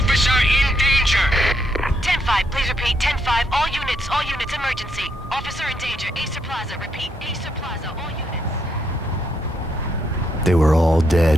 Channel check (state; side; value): normal; both; correlation 0.76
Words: in danger. 10-5, please repeat. 10-5, all units, emergency. Officer in danger, Acer Plaza. Repeat, Acer Plaza, all units. They were all